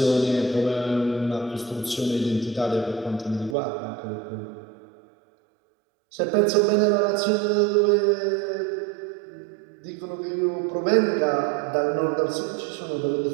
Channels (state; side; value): drops out; left; at 3.6 s